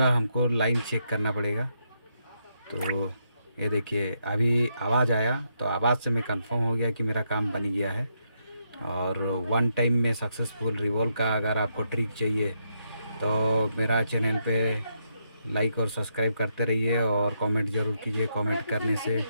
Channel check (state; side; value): inverted; both; correlation -0.79